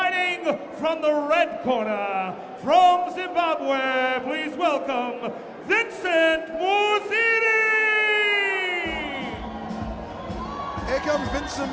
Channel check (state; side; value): identical; both; correlation 1.00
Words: from the red corner from Zimbabwe, please welcome Vincent Missouri! Here comes Vincent